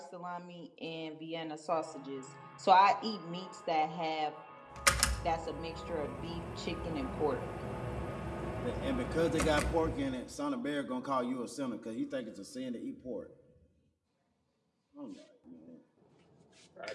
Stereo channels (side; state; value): both; identical; correlation 1.00